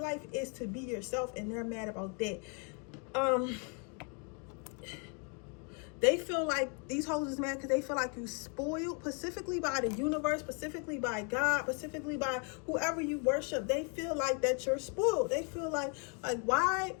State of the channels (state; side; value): quieter; right; 37.8 dB